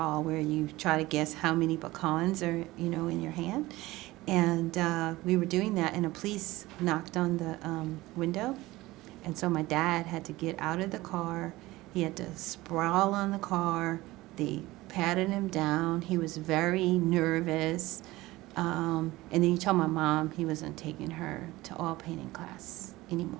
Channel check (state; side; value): quieter; left; 18.9 dB